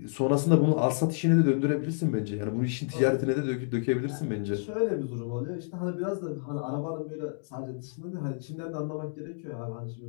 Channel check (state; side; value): silent; right; digital silence